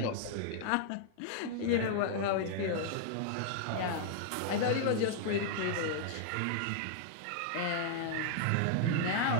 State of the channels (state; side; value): different; both; correlation 0.00